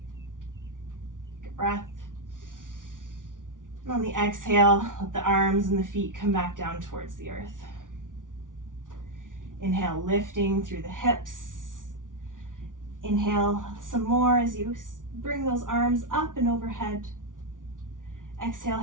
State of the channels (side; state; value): left; late; 0.88 ms